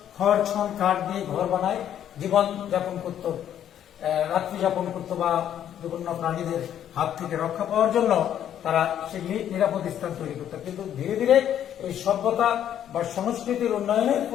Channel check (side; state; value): right; quieter; 10.3 dB